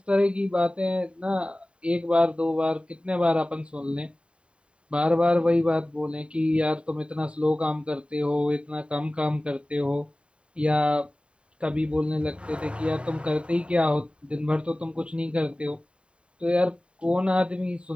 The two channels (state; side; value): late; left; 0.056 ms